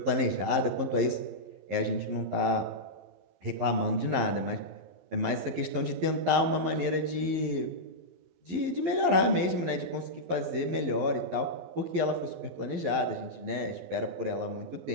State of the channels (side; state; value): left; late; 11 ms